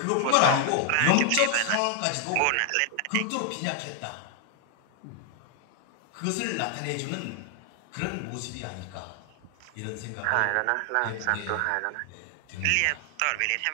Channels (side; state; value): both; different; correlation 0.00